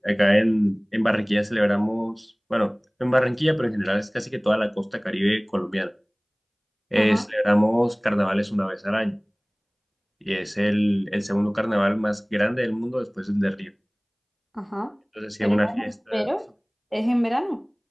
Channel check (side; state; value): both; identical; correlation 1.00